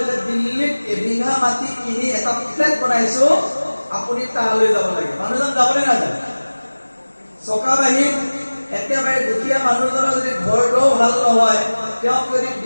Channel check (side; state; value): both; inverted; correlation -1.00